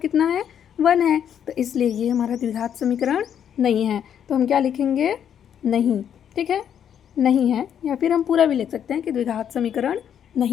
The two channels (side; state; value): right; quieter; 9.0 dB